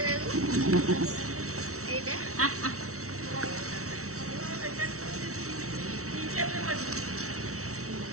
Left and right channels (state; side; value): late; left; 0.64 ms